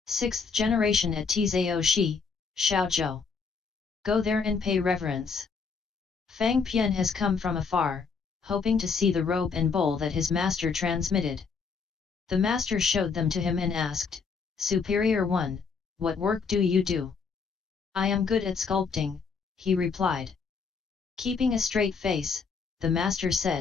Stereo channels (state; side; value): quieter; right; 5.2 dB